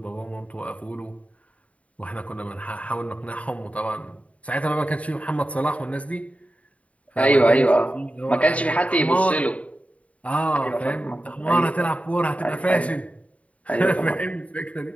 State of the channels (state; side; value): late; right; 0.066 ms